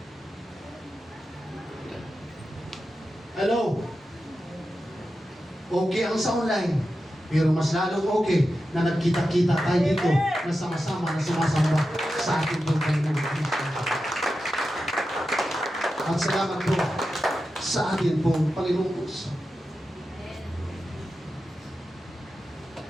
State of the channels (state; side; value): normal; both; correlation 0.91